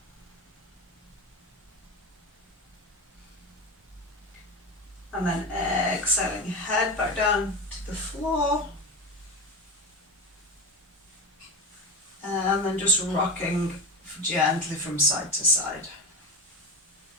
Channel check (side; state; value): both; normal; correlation 0.21